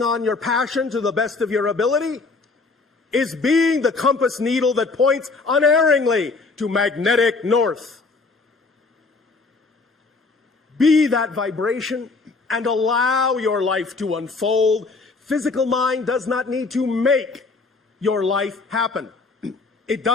on your passion to the best of your ability is being the compass needle that points unerringly to magnetic north. Be that vibration and allow your life to unfold. Physical mind does not need to make your life happen. It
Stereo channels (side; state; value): right; quieter; 3.9 dB